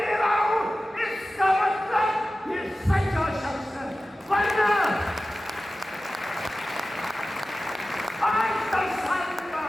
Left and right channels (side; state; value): both; normal; correlation 0.95